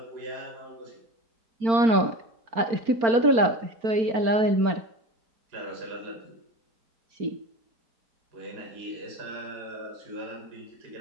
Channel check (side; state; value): left; late; 4.4 ms